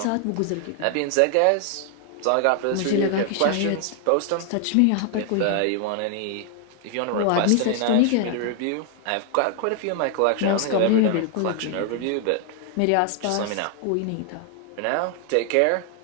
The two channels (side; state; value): both; different; correlation 0.00